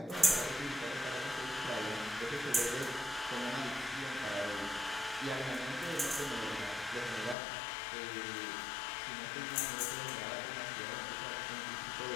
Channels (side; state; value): right; drops out; at 7.4 s